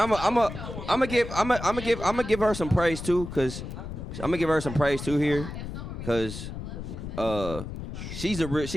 gonna give her some praise too, cause here, cause she's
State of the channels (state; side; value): noise; left; rumble, 8 dB below the sound